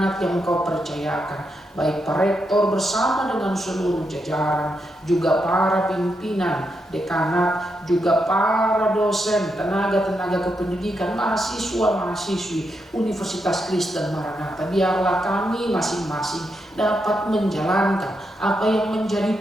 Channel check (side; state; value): both; normal; correlation 0.83